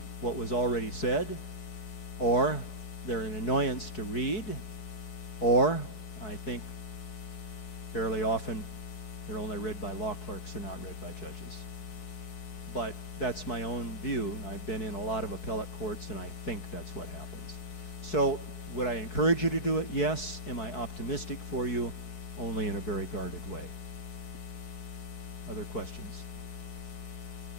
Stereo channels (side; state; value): right; late; 4.6 ms